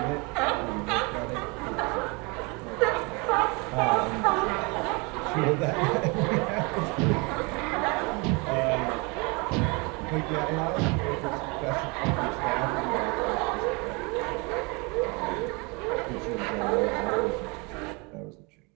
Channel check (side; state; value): left; quieter; 28.9 dB